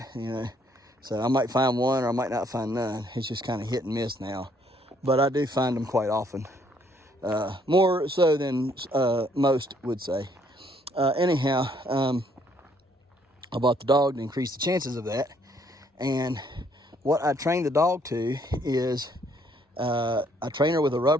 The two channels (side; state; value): both; normal; correlation 0.67